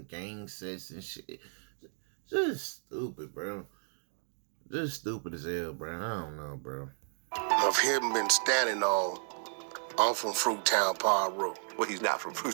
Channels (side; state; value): left; silent; digital silence